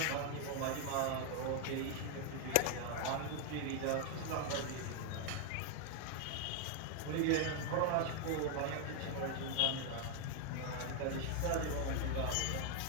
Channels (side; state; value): both; different; correlation 0.00